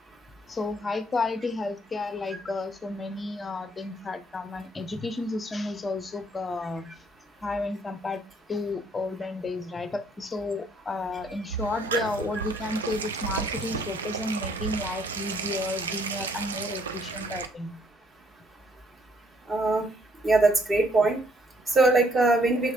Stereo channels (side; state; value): both; normal; correlation 0.66